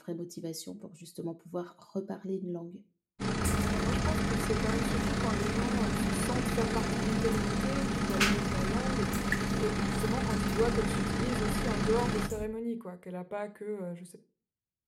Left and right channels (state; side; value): identical; both; correlation 1.00